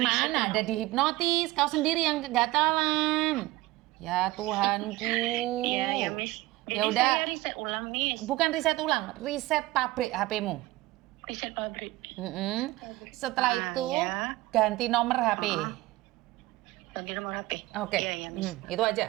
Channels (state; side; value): quieter; left; 18.7 dB